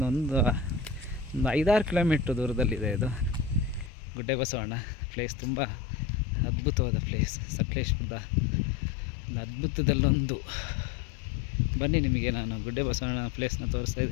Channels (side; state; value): right; drops out; at 3.9 s